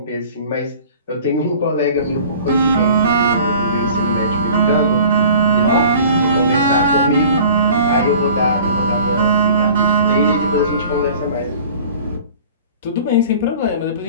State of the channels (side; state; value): both; inverted; correlation -0.45